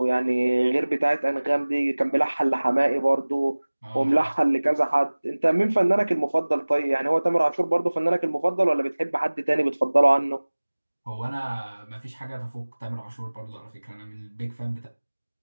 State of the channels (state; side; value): inverted; both; correlation -1.00